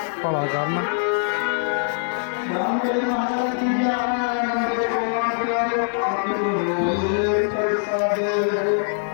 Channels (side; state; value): right; silent; digital silence